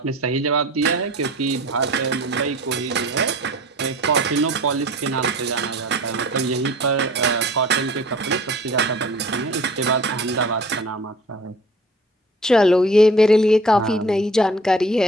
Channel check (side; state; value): both; normal; correlation 0.47